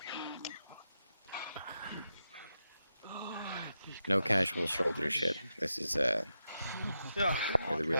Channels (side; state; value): both; inverted; correlation -0.86